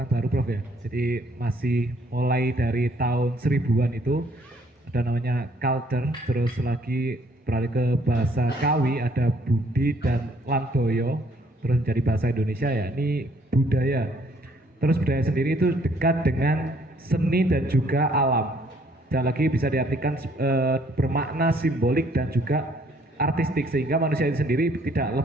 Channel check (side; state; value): both; normal; correlation 0.64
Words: baru Prof ya. Jadi masih mulai dari tahun 1000-an itu ada namanya culture, terus lagi beralih ke bahasa Kawi, ada Budi dan Landoyo, terus menjadi bahasa Indonesia ya, ini budaya. Terus budaya sendiri itu dekat dengan seni dan juga alam. Dan lagi bisa diartikan bermakna simbolik dan juga artistik, sehingga manusia itu sendiri tidak